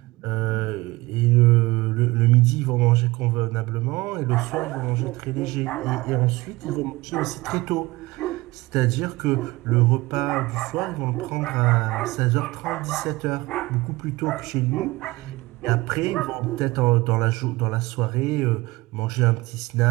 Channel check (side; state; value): left; quieter; 21.0 dB